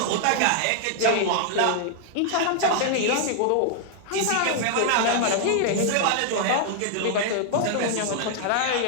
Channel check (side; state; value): both; different; correlation 0.00